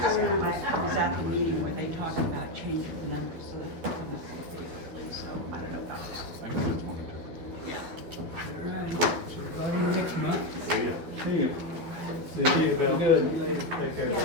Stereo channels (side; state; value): left; late; 12 ms